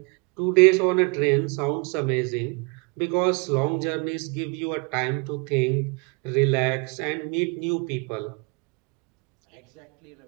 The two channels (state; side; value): quieter; left; 32.5 dB